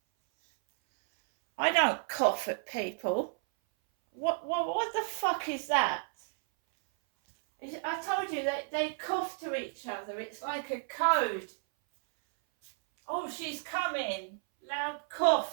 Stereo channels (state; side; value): silent; left; 56 dB below the other